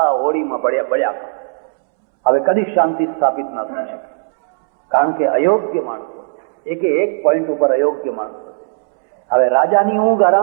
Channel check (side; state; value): left; silent; 69 dB below the other